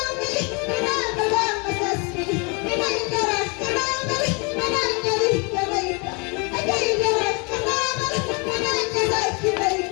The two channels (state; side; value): quieter; right; 31.9 dB